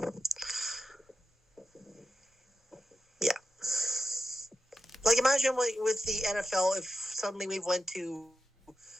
Yeah. Like, imagine with the NFL, if suddenly we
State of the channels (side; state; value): both; normal; correlation 0.90